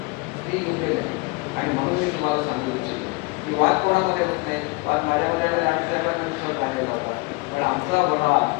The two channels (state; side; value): quieter; right; 26.3 dB